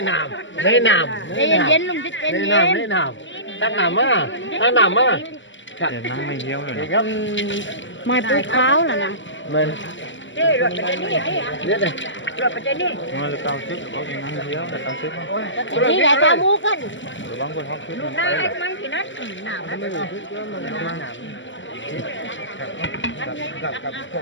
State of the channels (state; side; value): late; right; 0.54 ms